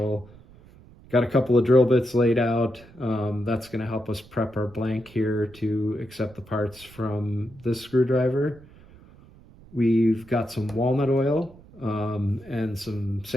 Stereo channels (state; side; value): noise; right; rumble, 23 dB below the sound